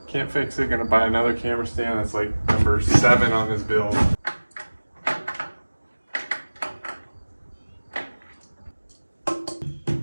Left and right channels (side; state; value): both; inverted; correlation -1.00